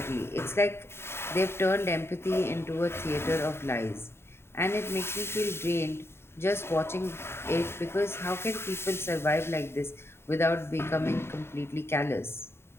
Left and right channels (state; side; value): late; right; 0.12 ms